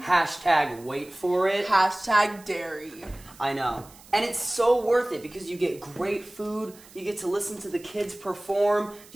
Hashtag wait for it. Hashtag dairy. I know. And it's so worth it because you get great food, you get to listen to the kids perform,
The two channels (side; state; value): right; noise; hiss, 23 dB below the sound